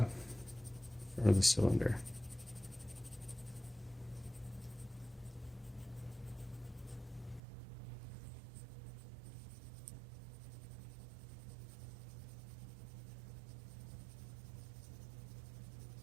for the cylinder.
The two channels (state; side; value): drops out; left; at 7.4 s